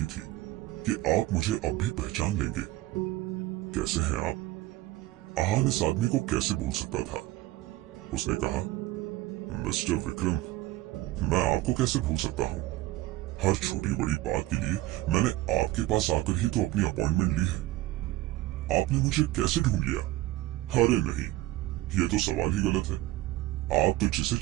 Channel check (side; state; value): left; quieter; 17.1 dB